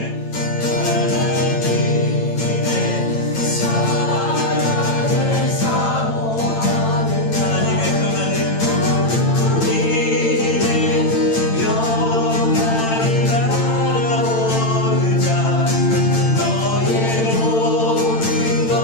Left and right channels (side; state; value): right; late; 8.9 ms